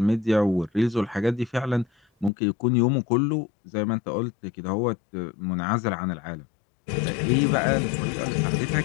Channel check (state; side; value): drops out; right; at 2.3 s